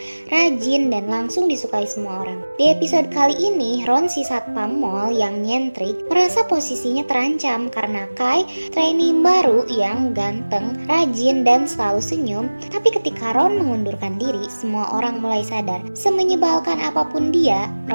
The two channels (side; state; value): both; inverted; correlation -1.00